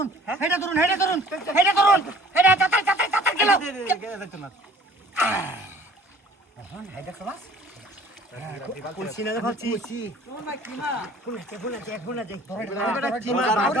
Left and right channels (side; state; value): both; normal; correlation 0.52